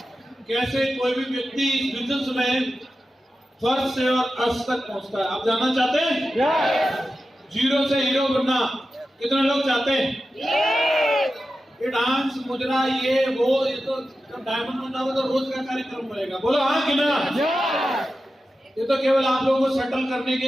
कैसे कोई भी व्यक्ति इस बिजनेस में फर्स्ट से और अर्श तक पहुंचता है, आप जानना चाहते हैं? जीरो से हीरो बनना कितने लोग चाहते हैं? ये डांस मुजरा ये वो, ये तो डायमंड बनना हो तो रोज का कार्यक्रम बनेगा। बोलो हाँ कि ना? ये तो केवल आप लोगों को सेटल करने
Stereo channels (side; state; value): both; normal; correlation 0.92